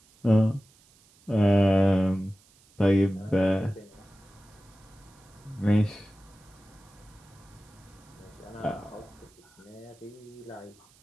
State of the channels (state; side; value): noise; right; hiss, 29 dB below the sound